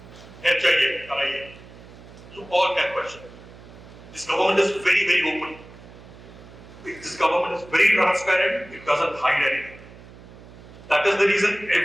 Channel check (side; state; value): right; noise; hum, 19 dB below the sound